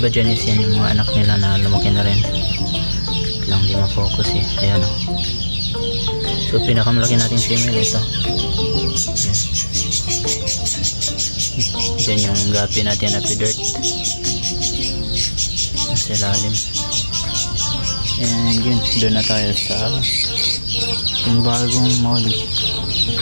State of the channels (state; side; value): inverted; both; correlation -1.00